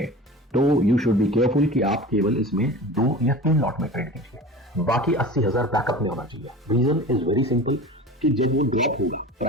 तो यू शुड बी केयरफुल कि आप केवल इसमें 2 या 3 लॉट में ट्रेड कीजिए, बाकी 80,000 बैकअप में होना चाहिए। रीजन इज वेरी सिंपल कि जब वो ड्रॉप होगा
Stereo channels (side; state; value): both; normal; correlation 0.35